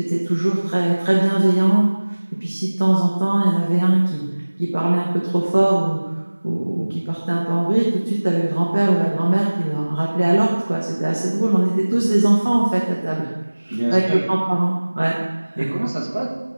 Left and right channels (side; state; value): both; inverted; correlation -1.00